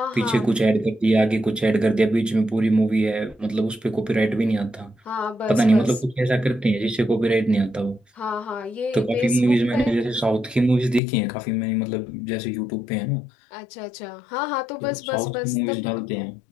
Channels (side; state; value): right; drops out; at 11.0 s